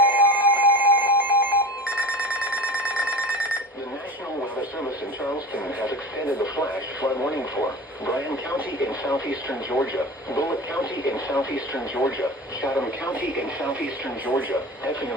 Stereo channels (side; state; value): both; normal; correlation 0.32